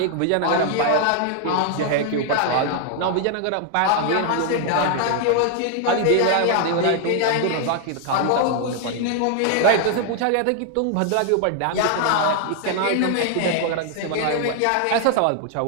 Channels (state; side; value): different; both; correlation 0.00